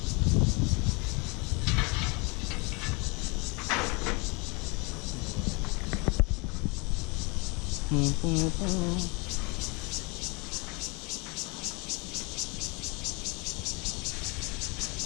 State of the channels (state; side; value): quieter; right; 30.0 dB